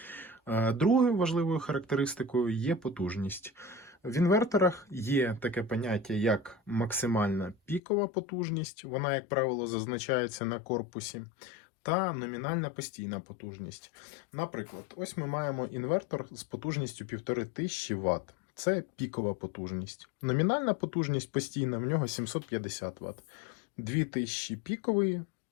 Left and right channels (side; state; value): right; drops out; at 7.8 s